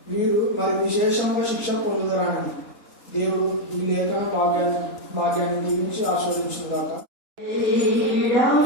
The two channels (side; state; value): right; late; 3.8 ms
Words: వీరు మరి విశేషంగా శిక్ష పొందుదరాని. దేవుడు ఈ లేఖన భాగ్యాన్ని దీవించి ఆస్వాదించుగాక.